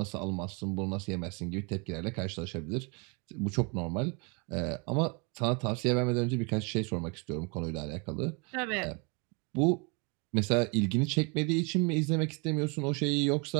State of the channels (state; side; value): quieter; left; 32.2 dB